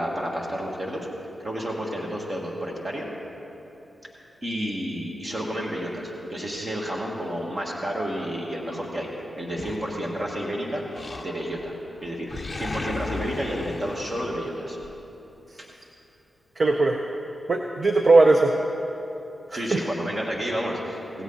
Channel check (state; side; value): normal; both; correlation 0.92